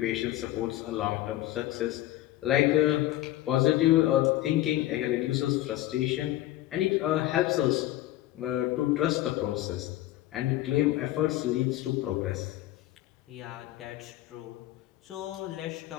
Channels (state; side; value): quieter; right; 15.3 dB